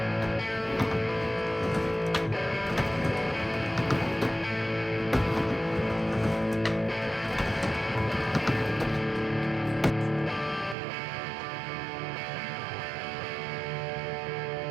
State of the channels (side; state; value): left; drops out; at 10.8 s